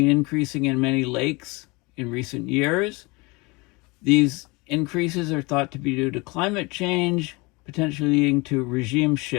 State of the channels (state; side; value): quieter; right; 26.1 dB